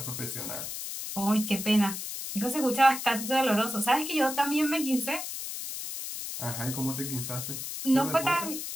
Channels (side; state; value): left; noise; hiss, 6 dB below the sound